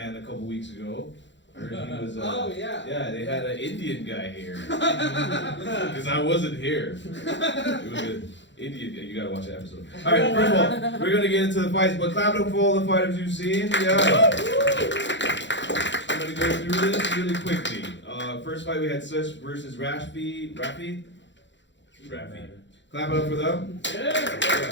a couple weeks ago. I heard he was. Oh yeah. Yeah, they had an Indian guy here. Because I wasn't here. It was an Indian guy. You gotta watch the episode. All right, first of all, we're gonna get into the fights, but clap it up for all the fighters you've seen. Yeah. I'm gonna go through this really quickly. First fight we had Sesh versus Raffy. Raffy. Clap it up for them. Yeah.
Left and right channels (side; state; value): right; late; 0.53 ms